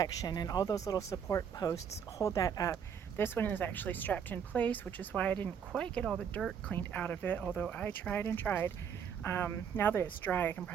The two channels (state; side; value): quieter; left; 7.6 dB